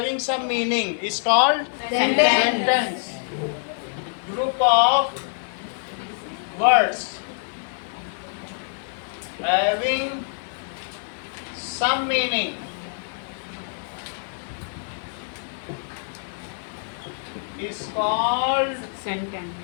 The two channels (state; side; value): silent; right; digital silence